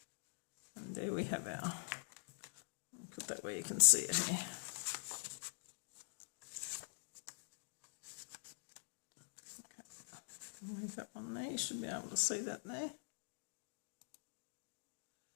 there we have our, put that where you can see it here. Okay, leave that one there, you should be able to see that there.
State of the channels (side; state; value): right; silent; digital silence